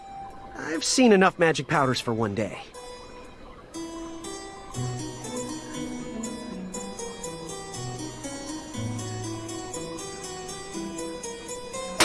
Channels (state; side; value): identical; both; correlation 1.00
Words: I've seen enough magic powders for one day.